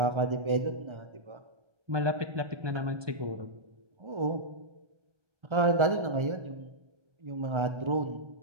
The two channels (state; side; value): late; left; 1.3 ms